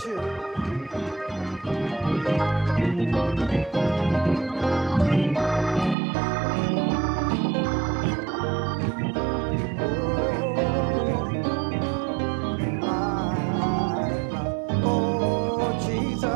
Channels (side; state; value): left; drops out; at 6.0 s